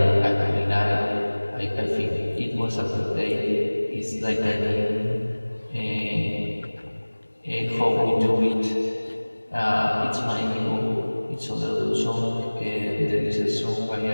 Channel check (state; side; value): inverted; both; correlation -1.00